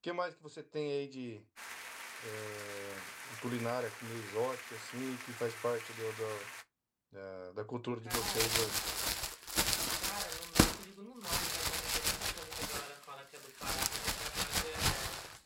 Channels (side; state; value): both; identical; correlation 1.00